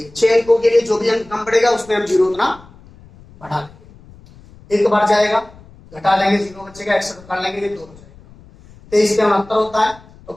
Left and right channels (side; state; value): left; noise; rumble, 24 dB below the sound